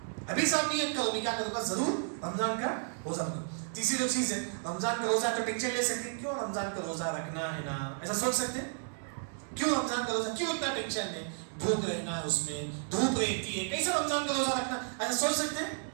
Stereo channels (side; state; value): left; silent; digital silence